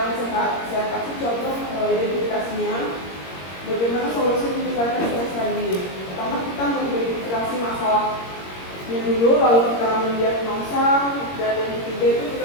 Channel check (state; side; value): late; right; 21 ms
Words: sehat? Saya kasih contoh identifikasinya. Bagaimana solusi meningkatkan stres tadi? Pertama, kita mengidentifikasi masalahnya dulu, lalu kita mendiagnosa, dan yang ketiga itu